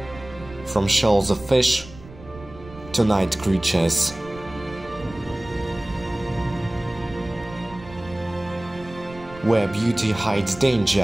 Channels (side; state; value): right; noise; rumble, 18 dB below the sound